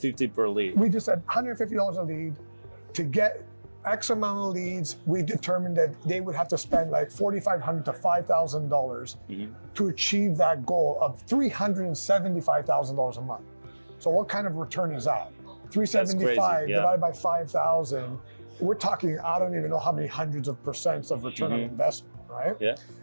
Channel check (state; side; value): inverted; both; correlation -1.00